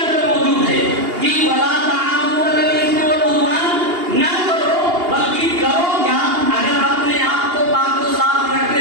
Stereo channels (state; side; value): late; left; 2.8 ms